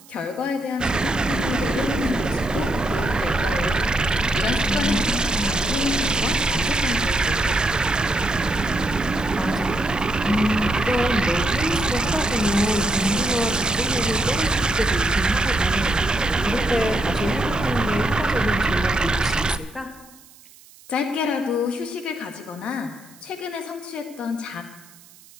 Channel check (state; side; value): noise; right; hiss, 24 dB below the sound